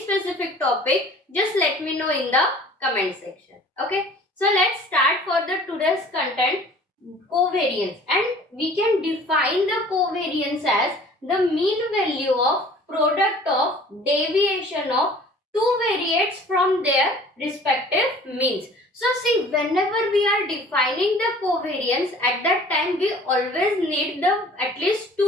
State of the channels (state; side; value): normal; both; correlation 0.48